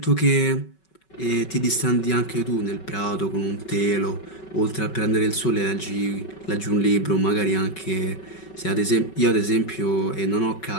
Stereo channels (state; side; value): late; right; 5.3 ms